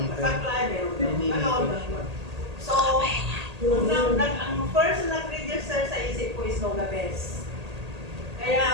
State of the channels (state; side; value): late; left; 1.8 ms